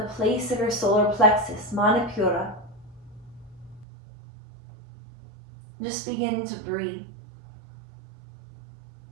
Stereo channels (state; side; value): drops out; left; at 3.9 s